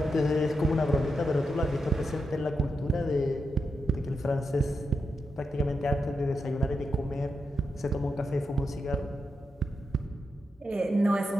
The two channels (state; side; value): normal; both; correlation 0.86